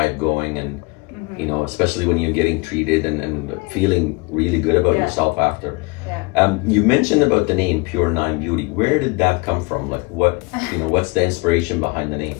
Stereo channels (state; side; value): quieter; right; 27.1 dB